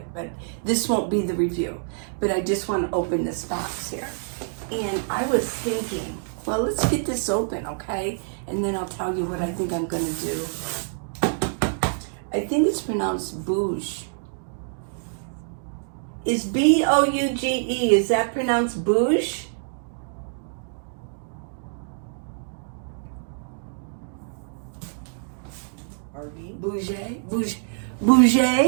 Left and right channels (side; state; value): left; silent; digital silence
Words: but this won't be the review. But I just want to open this box here. And I was thinking, well, let's get this open, okay? And then I'll tell you what I think I'm going to do. I think it's pronounced Bouge. Is B-O-U-G-E, is that pronounced Bouge? RV? Bouge? Bouge? Bouge?